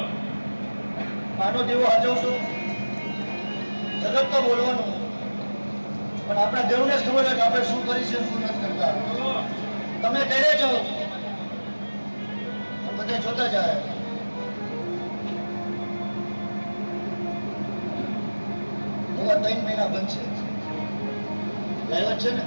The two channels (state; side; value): inverted; both; correlation -1.00